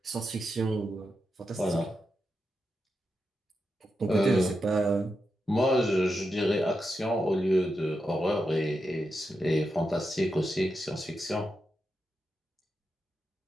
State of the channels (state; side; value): normal; both; correlation 0.87